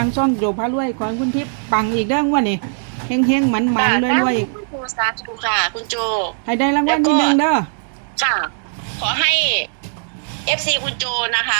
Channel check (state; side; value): silent; left; digital silence